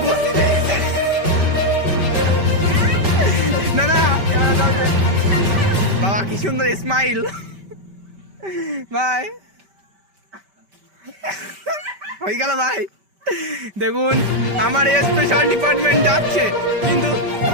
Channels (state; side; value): late; left; 5.1 ms